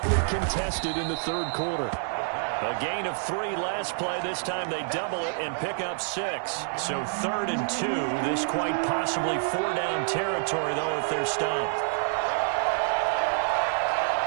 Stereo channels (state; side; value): silent; left; digital silence